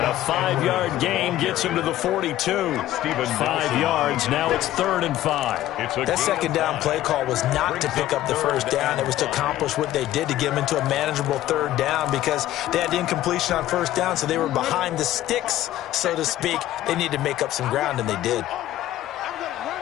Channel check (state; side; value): quieter; right; 14.0 dB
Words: a 5-yard gain gets him to the 42. 5 yards. Now it's 3rd and 5. That second down play call was not to pick up the first down. It was to accomplish what they did to get them into a manageable 3rd down because they had incompletion on first down, so they were behind the sticks, so to speak. They needed to make up some ground, and they did.